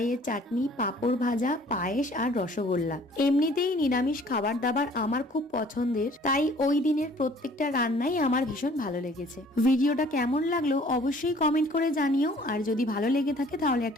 চাটনি, পাঁপড় ভাজা, পায়েস আর রসগোল্লা। এমনিতেই নিরামিষ খাবার দাবার আমার খুব পছন্দের, তাই ওই দিনের প্রত্যেকটা রান্নাই আমার ভীষণ ভালো লেগেছে। ভিডিওটা কেমন লাগলো অবশ্যই কমেন্ট করে জানিও, আর যদি ভালো লেগে থাকে তাহলে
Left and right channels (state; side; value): normal; both; correlation 0.54